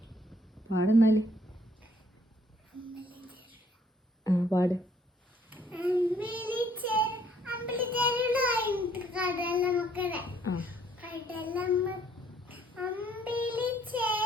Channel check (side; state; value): both; normal; correlation 0.64